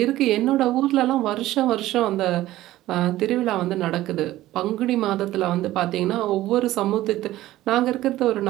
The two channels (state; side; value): quieter; left; 15.5 dB